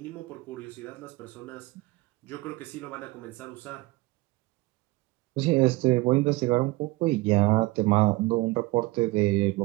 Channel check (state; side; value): quieter; left; 21.1 dB